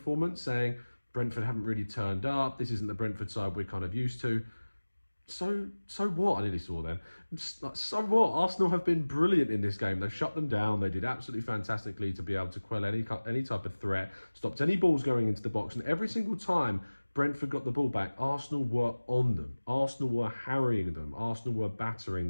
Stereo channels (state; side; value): inverted; both; correlation -1.00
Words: saying Brentford haven't really turned up. This isn't the Brentford side we're kind of used to. So what? I nearly saw them. So what? Arsenal have been brilliant in this game. They've shut them down. They did absolutely fantastically to be able to quell any type of threat, stopped any balls going into the box, and every single time Brentford got the ball back, Arsenal were on them. Arsenal were harrying them. Arsenal were battering